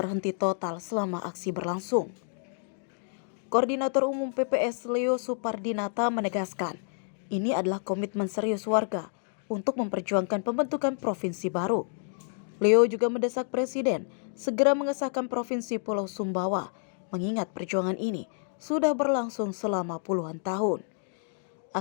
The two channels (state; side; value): silent; right; digital silence